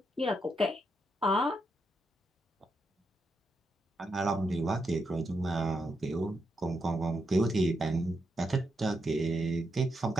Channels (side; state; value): both; normal; correlation 0.83